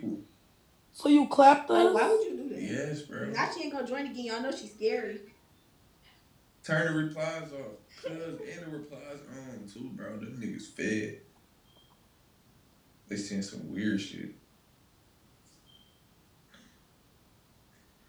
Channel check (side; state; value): both; identical; correlation 1.00